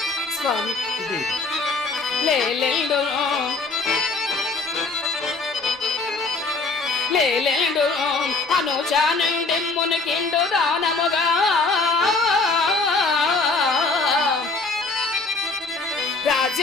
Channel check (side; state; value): right; quieter; 3.8 dB